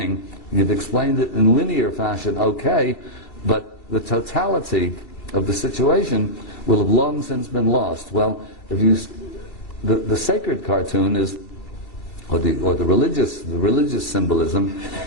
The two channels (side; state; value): right; late; 2.3 ms